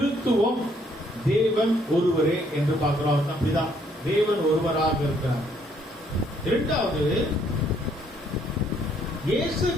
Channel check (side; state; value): both; normal; correlation 0.67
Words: தேவன் ஒருவரே என்று பார்க்கிறோம். அப்படிதான் தேவன் ஒருவராக இருக்கிறார். இரண்டாவது, இயேசு